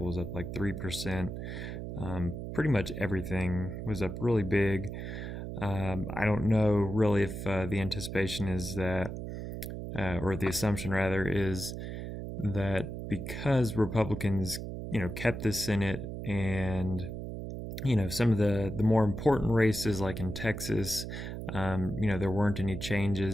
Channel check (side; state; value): right; noise; hum, 6 dB below the sound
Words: was up like 3%. Pretty much everything was up really big. I don't know really if the anticipation is that, or the assumption rather, is that because Republicans, kept the Senate and some of the more important races like in Texas, there weren't any